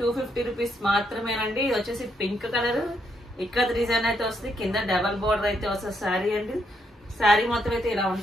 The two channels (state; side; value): normal; both; correlation 0.76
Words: 250 రూపీస్ మాత్రమేనండి. ఇది వచ్చేసి పింక్ కలర్ ఇక్కడ డిజైన్ అయితే వస్తుంది, కింద డబల్ బోర్డర్ అయితే వస్తుంది శారీ అండి. శారీ మొత్తం అయితే ఇలా